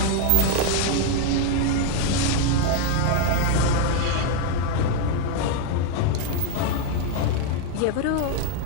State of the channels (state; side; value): different; both; correlation 0.01